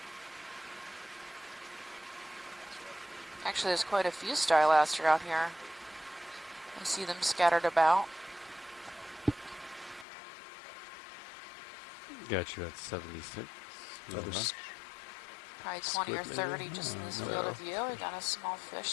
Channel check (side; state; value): right; drops out; at 10.1 s